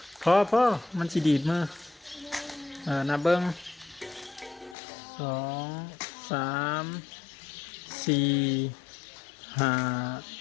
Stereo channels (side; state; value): right; drops out; at 4.8 s